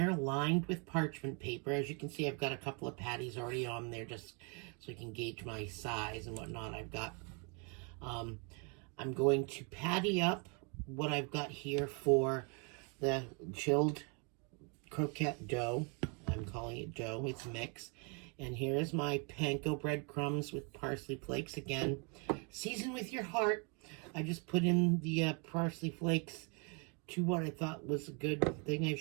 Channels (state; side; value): quieter; left; 34.9 dB